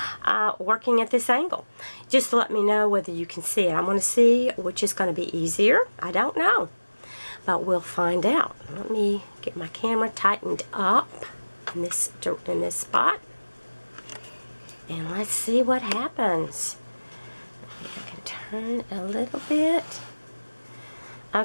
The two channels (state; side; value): inverted; both; correlation -1.00